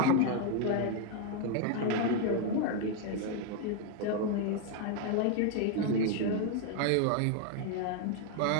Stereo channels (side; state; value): both; different; correlation 0.01